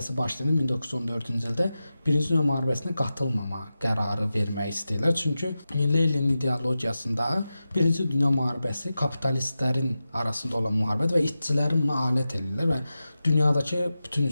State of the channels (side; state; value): both; inverted; correlation -0.93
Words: başlayanda 1914-cü ildə Birinci Dünya müharibəsinə qatılmama qərarı vermək istəyirlər. Çünki Leninin ideologiyasında Birinci Dünya müharibəsi kapitalistlərin arasında olan müharibədir və işçilərin buna alət edirlər və dünyadakı bütün